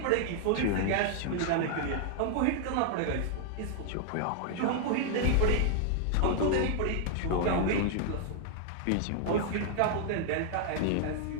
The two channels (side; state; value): both; different; correlation 0.00